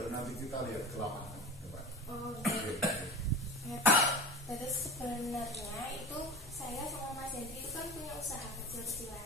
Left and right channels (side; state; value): both; normal; correlation 0.32